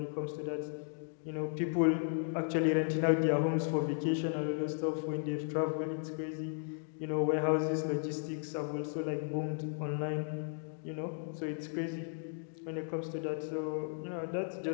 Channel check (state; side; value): silent; right; digital silence